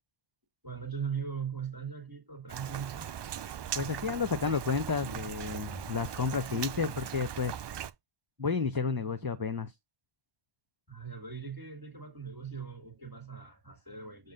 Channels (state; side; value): late; left; 1.2 ms